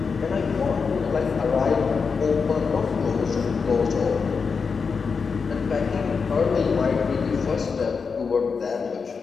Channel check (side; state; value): right; quieter; 5.3 dB